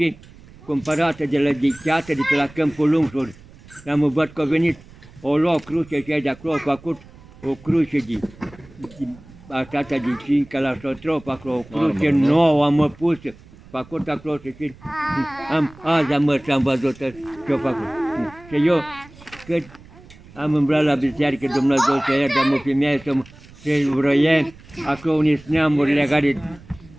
cumpărată de la Dicheată, de pe la Câmpul Lungșor. Am văzut că a venit, o luat cruce și de acolo, a făcut o cruce așa de 5 la Sotrop, acolo, o cruce Marmură, da? nouă, am pus, făcut acolo și azi am mers și am văzut ce-a făcut. Și eu, cât am îmblat la biserică, Dumnezeu să ierte, am o femeie să vroie, acolo unii neamuri legate,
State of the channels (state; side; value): noise; right; rumble, 22 dB below the sound